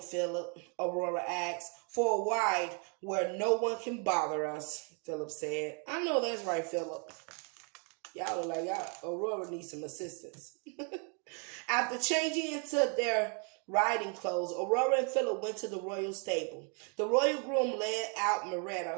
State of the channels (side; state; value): left; quieter; 37.8 dB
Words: Aurora asked. "For a ride where no one can bother us," Philip said. "I know that's right, Philip. Y'all look like Aurora needs some assistance." After changing into their riding clothes, Aurora and Philip went to the royal stable. The royal groom led out